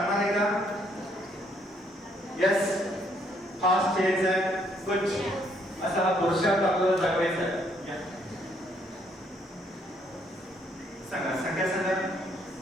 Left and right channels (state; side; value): normal; both; correlation 0.69